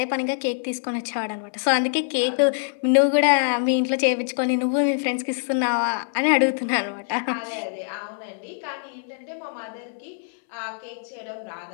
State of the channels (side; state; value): right; silent; 62 dB below the other